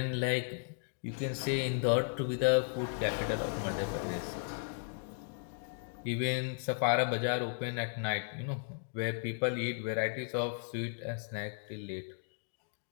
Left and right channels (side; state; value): right; silent; digital silence